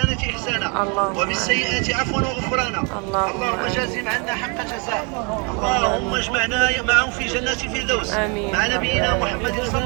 إحسانا اللهم وبالسيئات عفوا وغفرانا. اللهم جازهم عنا حق جزاء. اللهم اجمعنا معهم في جنات الفردوس مع نبينا محمد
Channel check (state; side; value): quieter; left; 33.1 dB